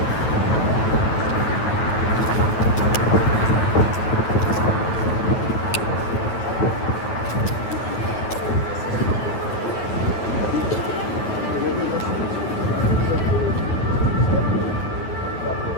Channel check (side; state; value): right; late; 9.4 ms